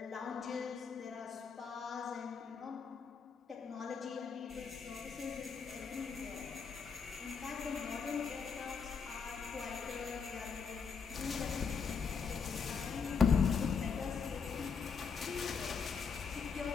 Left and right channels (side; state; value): right; quieter; 5.8 dB